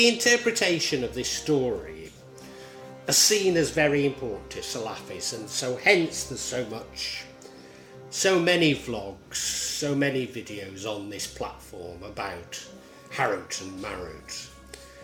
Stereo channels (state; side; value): identical; both; correlation 1.00